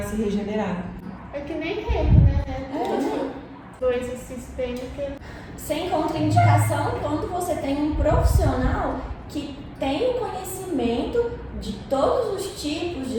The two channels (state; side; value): identical; both; correlation 1.00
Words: se regenerar. É que nem reiki, né? Coisa sistêmica. Sem contraindicação quando você tem um profissional que tem o conhecimento de todos os tipos de